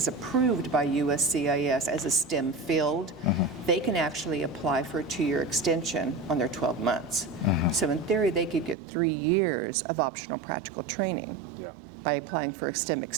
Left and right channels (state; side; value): drops out; left; at 8.8 s